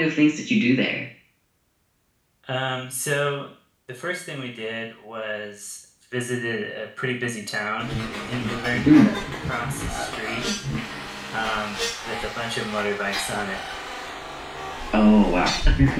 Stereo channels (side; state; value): both; identical; correlation 1.00